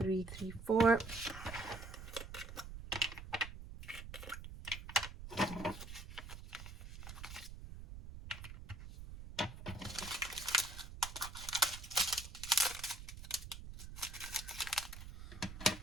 3, 3, 4.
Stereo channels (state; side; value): noise; right; rumble, 11 dB below the sound